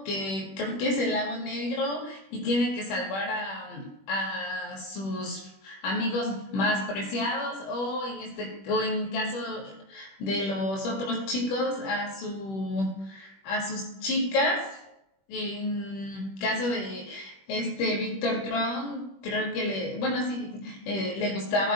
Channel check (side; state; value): right; late; 21 ms